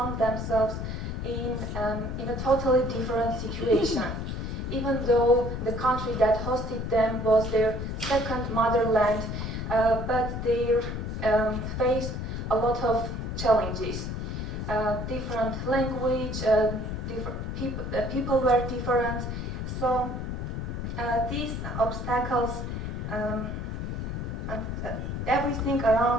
themselves in a totally different situation. Even though the country that hosted them was their second motherland, but they faced a lot of challenges. Different language, people were different, so these obstacles and everything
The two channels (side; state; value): left; noise; rumble, 4 dB below the sound